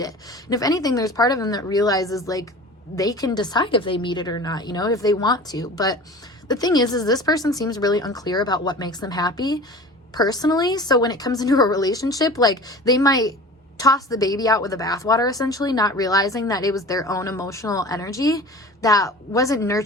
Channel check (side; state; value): both; normal; correlation 0.39